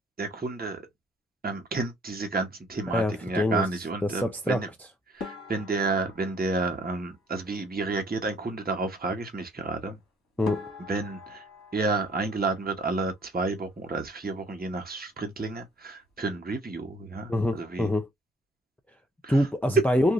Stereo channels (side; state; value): both; normal; correlation 0.62